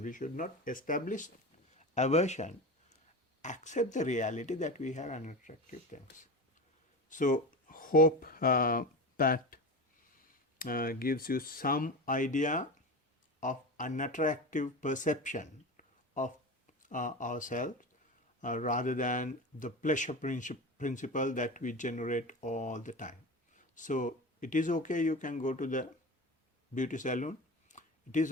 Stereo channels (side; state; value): both; normal; correlation 0.27